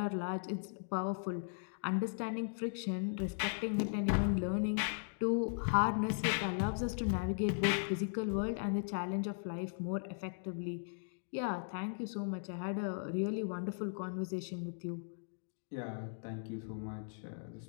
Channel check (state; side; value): silent; right; digital silence